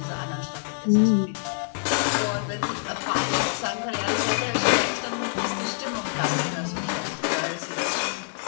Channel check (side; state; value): right; silent; 61 dB below the other